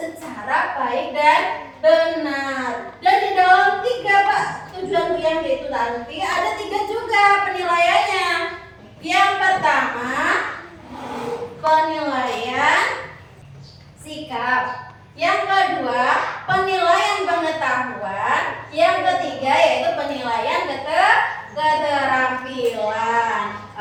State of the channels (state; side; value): identical; both; correlation 1.00